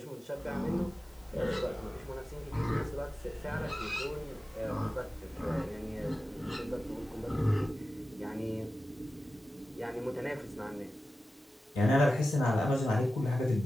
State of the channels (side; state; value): both; normal; correlation 0.94